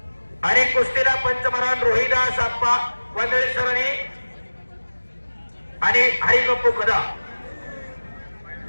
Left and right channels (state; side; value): inverted; both; correlation -1.00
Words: आणि कुस्तीला पंचमहान रोहिदास आप्पा वंदळे सरांनी आणि हरिगप्पू कदा